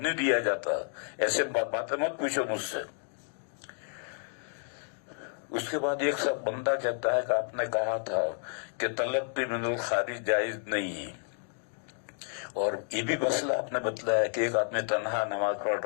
دیا جاتا۔ ایسے باتیں مت پوچھو مجھ سے۔ اس کے بعد ایک سب بندہ کہتا ہے کہ آپ نے کہا تھا کہ تلقی من الخارج جائز نہیں ہے، اور یہ بھی مسئلہ آپ نے بتلایا کہ ایک آدمی تنہا نماز پڑھ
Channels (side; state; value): right; silent; 57 dB below the other